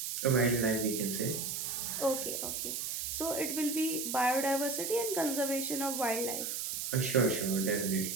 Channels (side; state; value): right; noise; hiss, 3 dB below the sound